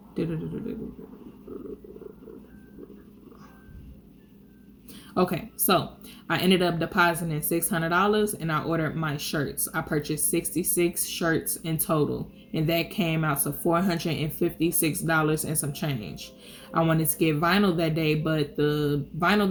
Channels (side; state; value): both; identical; correlation 1.00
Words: Okay, so I ended up depositing $600 and I ordered my shirts. I purchased 66 shirts in total, and that came out to $456 and some change. I wanted to get vinyl that day, but the vinyl